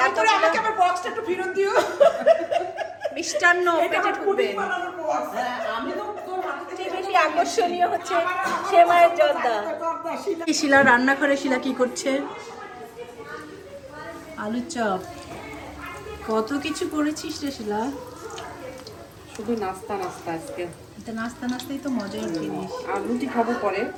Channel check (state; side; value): identical; both; correlation 1.00